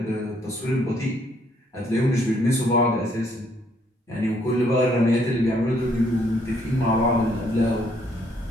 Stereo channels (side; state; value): both; normal; correlation 0.68